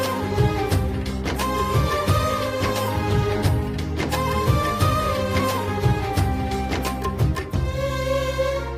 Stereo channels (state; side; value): identical; both; correlation 1.00